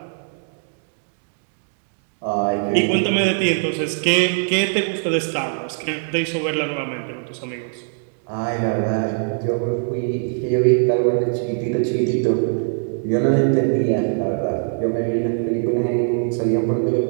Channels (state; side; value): silent; left; 60 dB below the other